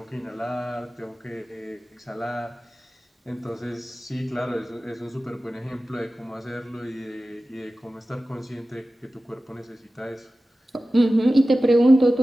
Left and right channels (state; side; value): normal; both; correlation 0.95